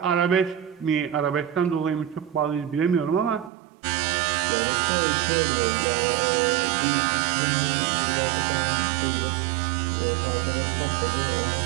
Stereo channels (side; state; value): left; drops out; at 3.5 s